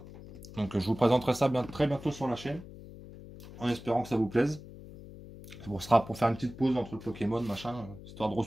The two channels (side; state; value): left; noise; hum, 16 dB below the sound